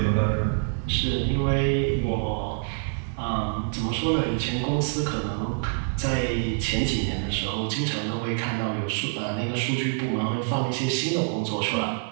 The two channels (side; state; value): left; silent; 61 dB below the other